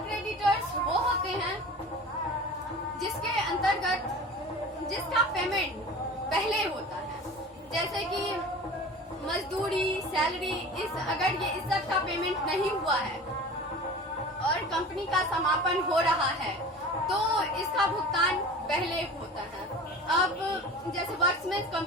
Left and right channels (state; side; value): normal; both; correlation 0.37